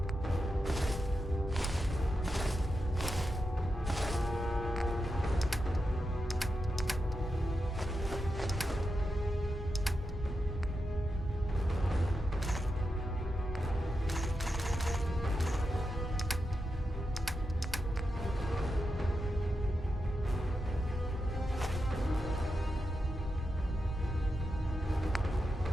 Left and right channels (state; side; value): normal; both; correlation 0.88